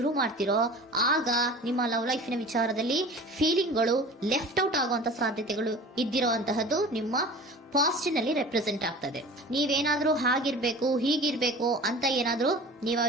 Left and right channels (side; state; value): both; normal; correlation 0.40